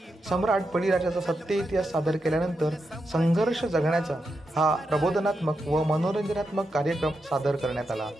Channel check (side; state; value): both; normal; correlation 0.86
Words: सम्राट बळीराजाचा सत्य इतिहास सादर केल्यानंतर संघर्ष जगण्याचा हा प्रबोधनात्मक व मनोरंजनात्मक कार्यक्रम सादर करण्यात आला.